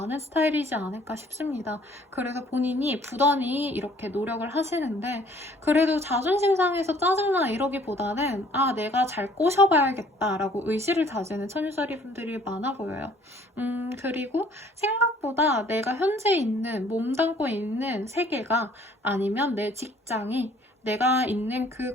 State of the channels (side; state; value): both; normal; correlation 0.57